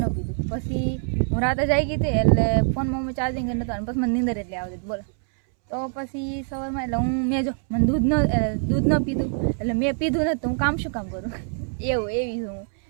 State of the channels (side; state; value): left; silent; 62 dB below the other